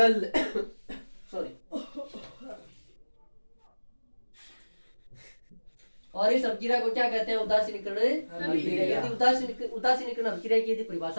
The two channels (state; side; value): inverted; both; correlation -1.00